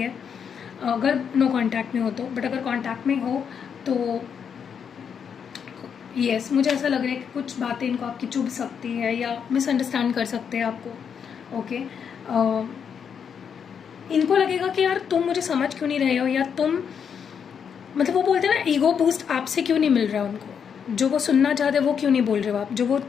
अगर नो कांटेक्ट में हो तो। बट अगर कांटेक्ट में हो तो यस, मुझे ऐसा लग रहा है कि कुछ बातें इनको आपकी चुभ सकती है, या मिसअंडरस्टैंड कर सकते हैं आपको। ओके, इनको लगेगा कि यार तुम मुझे समझ क्यों नहीं रहे हो, या तुम, मतलब वो बोलते हैं ना, ईगो बूस्ट आपसे क्यों नहीं मिल रहा है उनको, जो वो सुनना चाहते हैं वो क्यों नहीं बोल रहे हो आप, जो वो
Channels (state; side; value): quieter; right; 7.2 dB